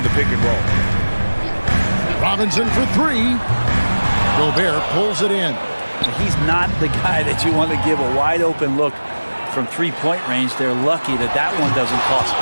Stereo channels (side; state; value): both; inverted; correlation -1.00